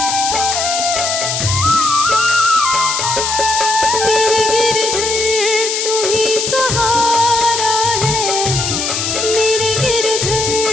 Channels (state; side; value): noise; left; hiss, 1 dB below the sound